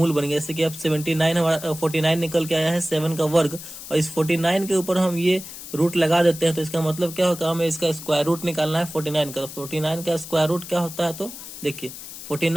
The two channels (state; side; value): noise; left; hiss, 12 dB below the sound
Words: बन गया। जैसे कि अब 79 हमारा 49 निकल के आया है, 7 का वर्ग, और इस 49 के ऊपर हम ये रूट लगा देते हैं। तो इसका मतलब क्या होगा, हमें इसका स्क्वायर रूट निकालना है 49 का। 49 का स्क्वायर रूट क्या होता है, तो देखिए